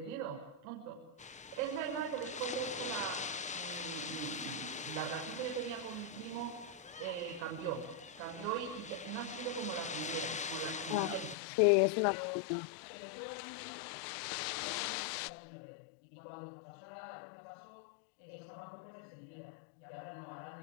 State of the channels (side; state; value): right; drops out; at 11.4 s